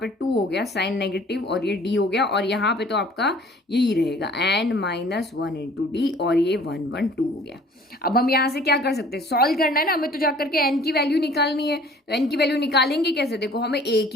2 हो गया, साइन नेगेटिव, और ये डी हो गया। और यहाँ पे तो आपका यही रहेगा एन -1 इंटू डी, और ये 1 1 2 हो गया। अब हम यहाँ से क्या कर सकते हैं, सॉल्व करना है ना हमें, तो जाकर के एन की वैल्यू निकालनी है। तो एन की वैल्यू निकालेंगे कैसे, देखो हमें ए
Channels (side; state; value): both; normal; correlation 0.52